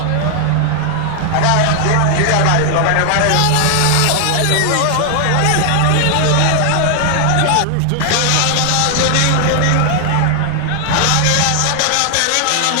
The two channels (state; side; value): different; both; correlation 0.00